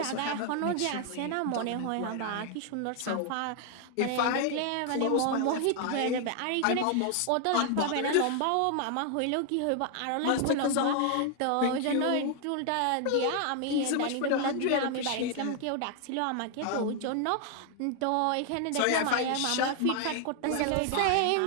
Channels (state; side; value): different; both; correlation 0.00